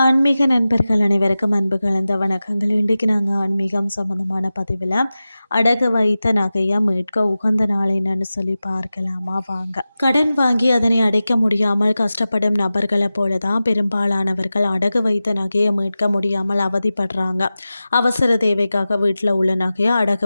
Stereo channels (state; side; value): inverted; both; correlation -0.95